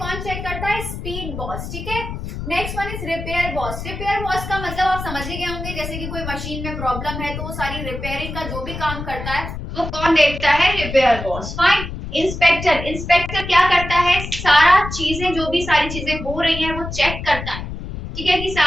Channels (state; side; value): noise; left; rumble, 8 dB below the sound